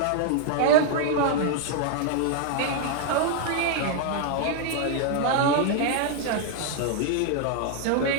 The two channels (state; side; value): different; both; correlation 0.00